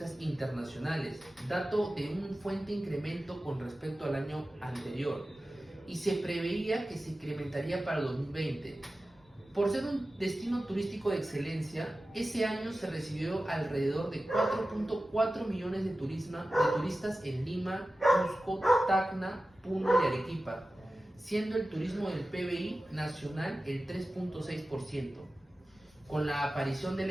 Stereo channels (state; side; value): normal; both; correlation 0.95